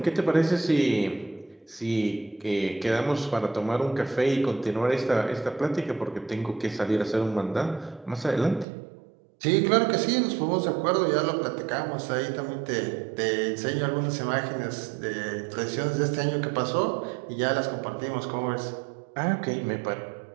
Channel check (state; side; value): drops out; left; at 8.7 s